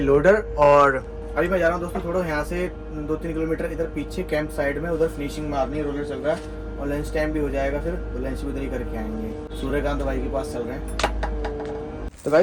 और अभी मैं जा रहा हूँ दोस्तों थोड़ा यहाँ से 2-3 किलोमीटर इधर पीछे कैंप साइड में, उधर फिनिशिंग मारनी है, रोलर चल रहा है और लंच टाइम भी हो जाएगा, फिर तो लंच भी उधर ही करके आएंगे। सूर्यकांत भाई के पास चल रहे हैं। तो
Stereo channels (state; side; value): identical; both; correlation 1.00